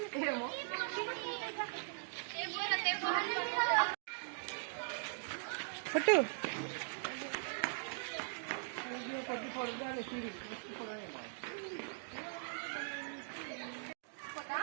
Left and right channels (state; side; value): silent; left; digital silence